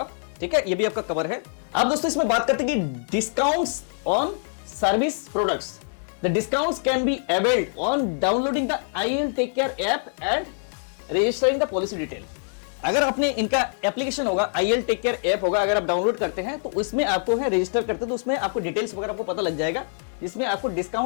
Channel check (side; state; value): right; silent; digital silence